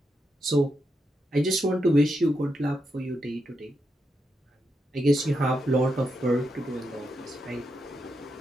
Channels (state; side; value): normal; both; correlation 0.83